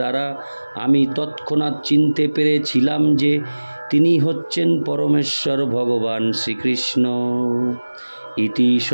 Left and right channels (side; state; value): both; inverted; correlation -1.00